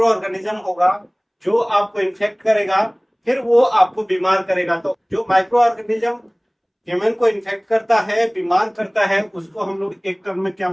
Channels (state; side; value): identical; both; correlation 1.00